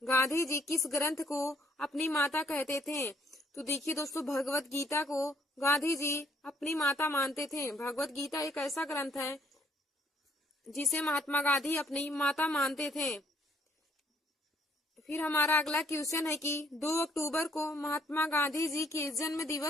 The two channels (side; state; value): both; normal; correlation 0.66